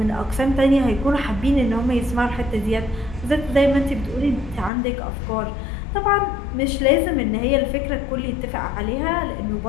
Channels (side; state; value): right; drops out; at 4.7 s